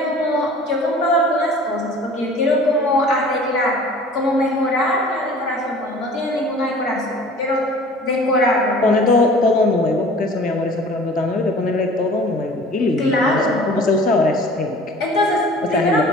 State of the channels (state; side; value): normal; both; correlation 0.46